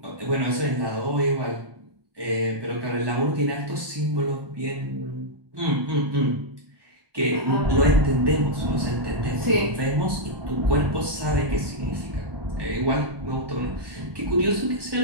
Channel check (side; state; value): left; late; 1.1 ms